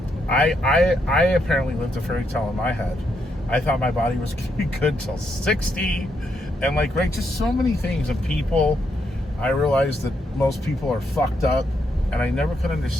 I apparently lived a fairy tale in my head. I thought my body was gonna be good till 60, and like, right, just so many things and people. I realized that most people are fucked up, and I never could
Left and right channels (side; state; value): both; normal; correlation 0.78